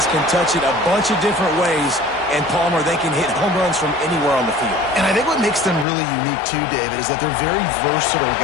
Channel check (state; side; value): drops out; right; at 5.9 s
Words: can touch it a bunch of different ways. And Palmer, they can hit home runs from anywhere on the field. And I think what makes them really unique too, David, is that they're very versatile